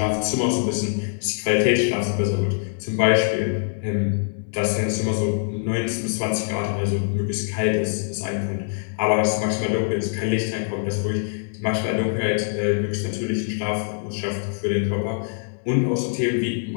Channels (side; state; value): right; silent; digital silence